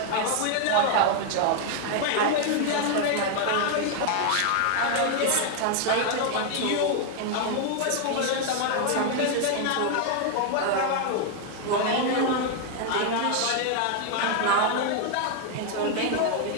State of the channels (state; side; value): different; both; correlation 0.00